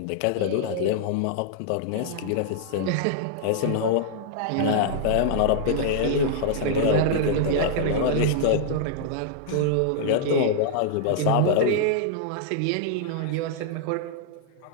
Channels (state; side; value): different; both; correlation -0.01